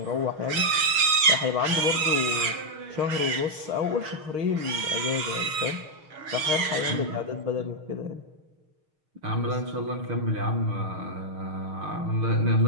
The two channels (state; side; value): late; left; 6.5 ms